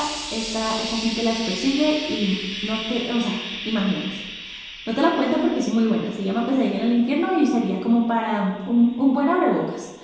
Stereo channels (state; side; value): identical; both; correlation 1.00